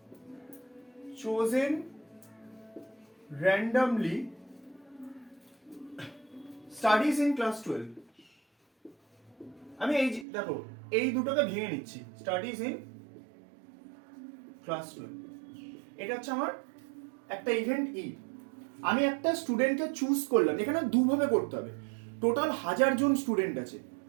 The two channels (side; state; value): left; drops out; at 10.2 s